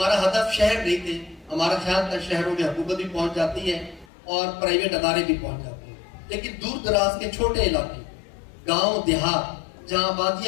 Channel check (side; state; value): right; drops out; at 4.0 s